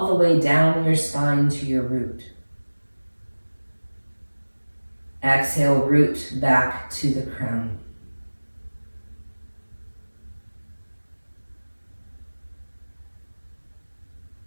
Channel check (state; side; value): inverted; both; correlation -1.00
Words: the way down your spine to your root. Exhale, root back to the crown.